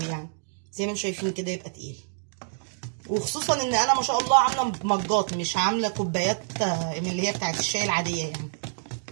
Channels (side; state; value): left; silent; digital silence